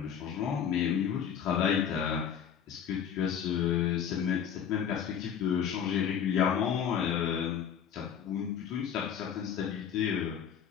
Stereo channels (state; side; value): quieter; right; 8.3 dB